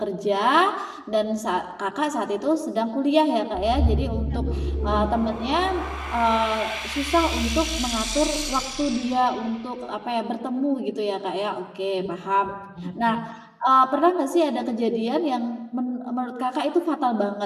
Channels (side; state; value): both; identical; correlation 1.00